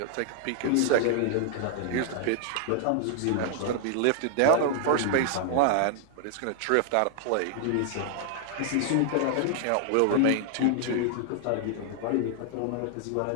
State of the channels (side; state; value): both; different; correlation 0.00